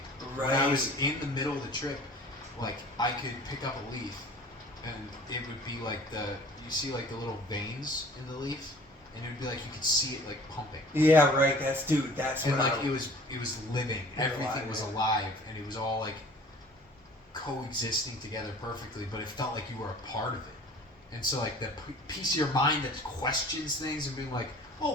Right. When I was in the middle of the trip, like I could pick up a leaf, and it would be like you see like the little veins in the leaf. And it would be like you could see it like pumping. Yeah, right. That's and like it was living. Everything was alive, and it was all like coexisting together perfectly. But it felt like you were a part of it. And so like the piece of your mind that questions things and being like, oh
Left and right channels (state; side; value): normal; both; correlation 0.48